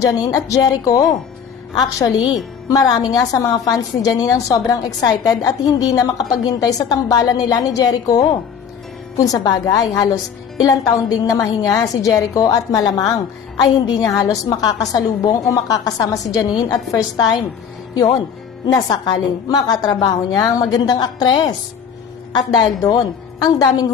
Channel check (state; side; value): quieter; right; 7.2 dB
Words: at Jericho. Actually, marami nga sa mga fans ni Janine ang sobrang excited at hindi na makapaghintay sa tambalan nila ni Jericho. Kung sa bagay, halos ilang taon ding namahinga si Jericho at malamang ay hindi niya halos makakasalubong o makakasama si Janine at first time. Yon, nasakaling makatrabaho niya ang magandang aktres. At dahil doon, ang daming